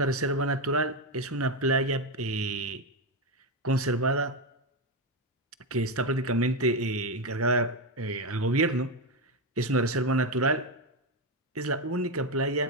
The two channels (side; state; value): both; normal; correlation 0.09